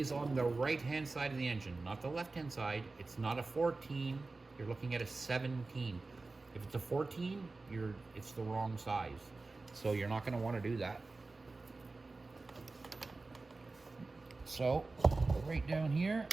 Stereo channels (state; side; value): quieter; left; 3.5 dB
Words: on the right-hand side of the engine, not the left-hand side. It's not a 14. You're looking at a 17. If it's a 14, it's the wrong size. So you're not going to want to do that. So, right down here